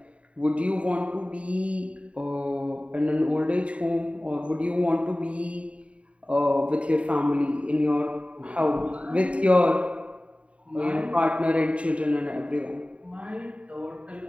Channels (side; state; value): left; late; 0.063 ms